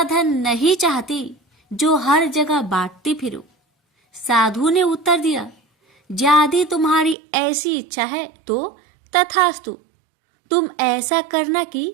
धन नहीं चाहती जो हर जगह बांटती फिरूं। साधु ने उत्तर दिया, यदि तुम्हारी ऐसी इच्छा है तो तथास्तु। तुम ऐसा करना कि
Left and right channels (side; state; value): left; drops out; at 7.2 s